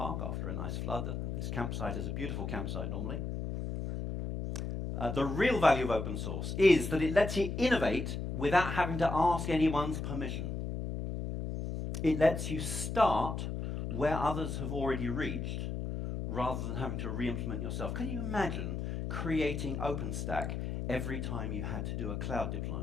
after a nice flood. This campsite is a beautiful campsite normally. The real value of open source is that it lets you innovate without having to ask anyone's permission. It lets you start where others have already reached rather than having to re-implement yourself. Can you imagine creating OpenStack every time you had to do a cloud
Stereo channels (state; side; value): noise; left; hum, 3 dB below the sound